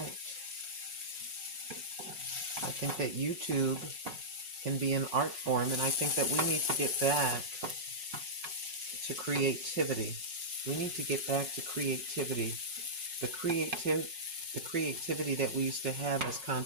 I think that YouTube can be an art form, and I think that we need to get back to creativity. We need to get back to creativity. The creativity that we used to have as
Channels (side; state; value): left; late; 5.4 ms